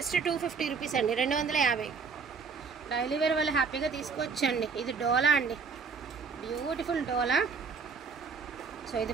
250 rupees అండి, 250. డైలీ వేర్ వాళ్ళు హ్యాపీగా తీసుకోవచ్చండి. ఇది డోలా అండి, బ్యూటిఫుల్ డోలా. సో ఇది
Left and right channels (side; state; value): left; quieter; 5.4 dB